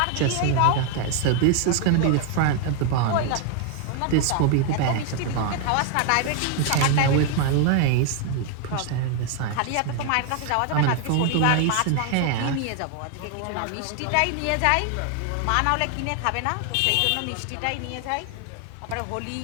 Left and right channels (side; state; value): both; different; correlation 0.00